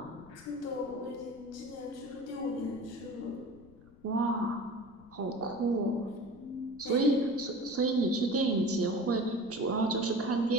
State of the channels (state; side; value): noise; left; rumble, 24 dB below the sound